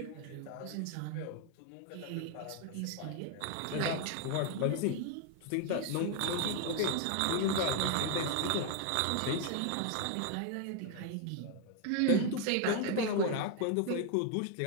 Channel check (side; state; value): both; different; correlation 0.01